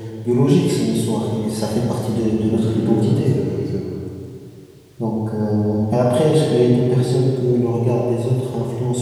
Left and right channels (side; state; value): both; identical; correlation 1.00